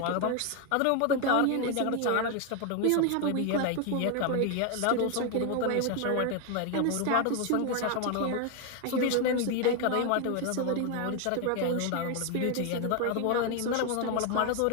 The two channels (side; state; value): both; different; correlation 0.01